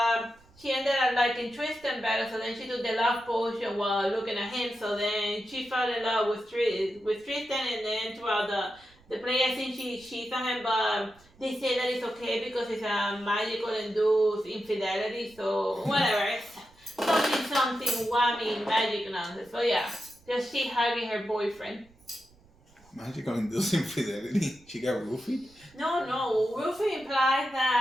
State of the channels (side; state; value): right; noise; rumble, 29 dB below the sound